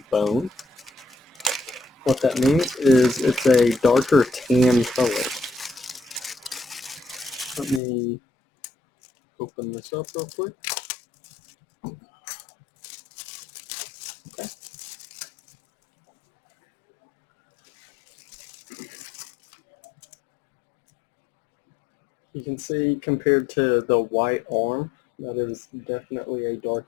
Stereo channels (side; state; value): right; drops out; at 7.8 s